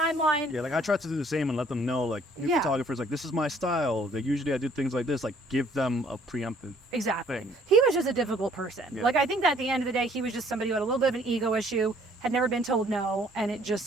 Yeah, like, I try to do the same and let them know, like, new photographers, like, this is my style. Like, usually I do things like this, like, give them a preemptive thing. He was just a difficult person. Like, I think that at the end of the day, he was just somebody who had a little bit of an ego issue, had never been told no, and it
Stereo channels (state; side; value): normal; both; correlation 0.60